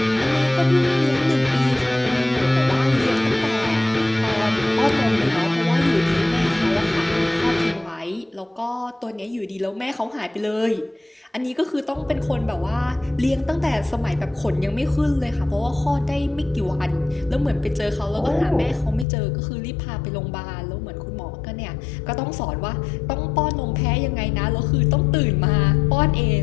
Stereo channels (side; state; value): right; drops out; at 19.1 s